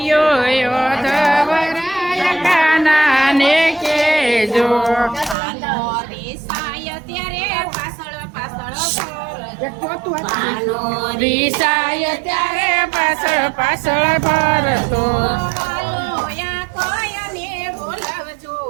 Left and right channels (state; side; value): drops out; left; at 5.4 s